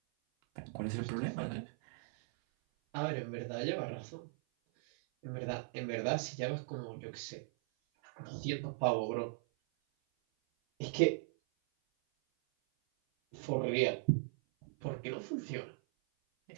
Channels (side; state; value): left; silent; 52 dB below the other